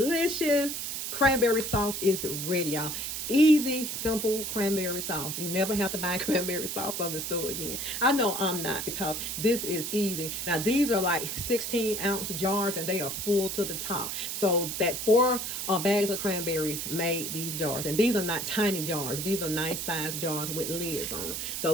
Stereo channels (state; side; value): noise; right; hiss, 4 dB below the sound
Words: cranberry sauce is ready, y'all. Easy, simple cranberry sauce. You never have to buy cranberry sauce from the store again. I know I'm not, because this is easy. Now, these are like 16-ounce jars, and they are full to the top. So that 4 bags of cranberries made these jars. And these are not tiny jars. These are nice sized jars with lids on them.